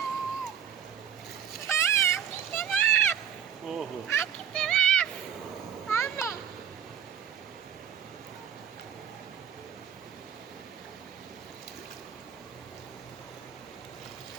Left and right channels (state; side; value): quieter; left; 8.7 dB